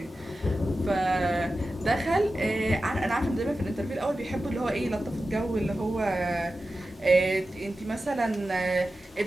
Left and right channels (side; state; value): both; normal; correlation 0.93